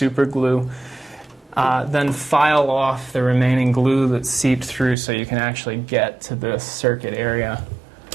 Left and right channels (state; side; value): drops out; left; at 5.0 s